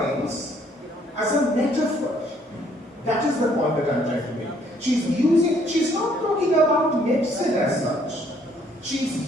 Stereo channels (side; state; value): both; normal; correlation 0.65